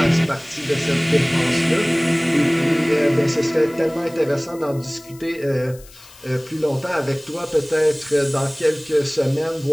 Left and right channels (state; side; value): noise; left; hiss, 22 dB below the sound